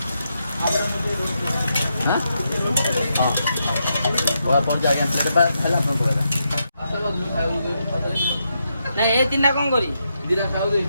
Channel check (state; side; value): inverted; both; correlation -0.82